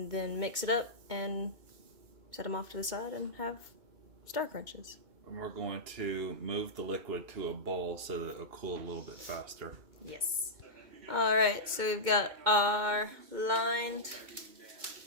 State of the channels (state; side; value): late; left; 2.2 ms